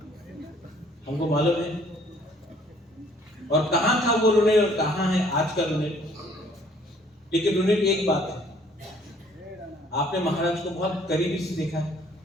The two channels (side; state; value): both; normal; correlation 0.59